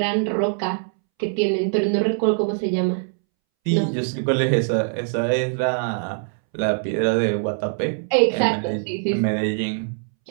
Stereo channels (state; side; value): silent; left; 64 dB below the other